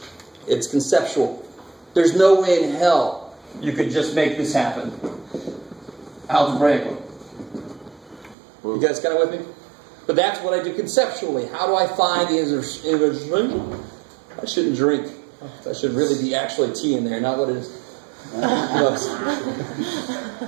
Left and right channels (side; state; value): left; drops out; at 8.3 s